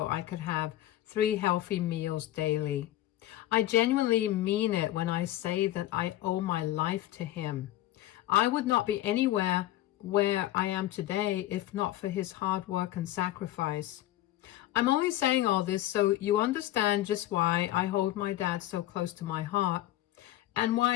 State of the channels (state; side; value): quieter; right; 14.7 dB